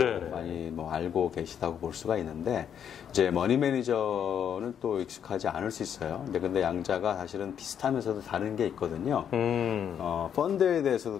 많이 뭐 알고 계시다고 볼 수가 있는데 이제 머니 매니저는 또 익숙하지 않을 수 있어요. 근데 양자가 사실은 비슷하면서도 다른 게 있거든요. 펀드에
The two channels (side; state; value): right; quieter; 8.6 dB